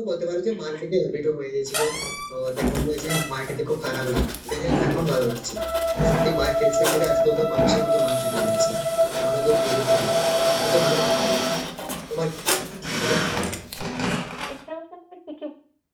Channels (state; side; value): identical; both; correlation 1.00